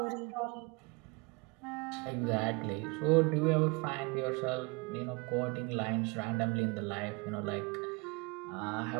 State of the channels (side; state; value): left; quieter; 28.2 dB